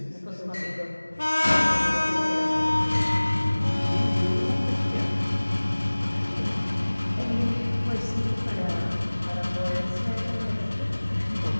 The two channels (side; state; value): both; inverted; correlation -1.00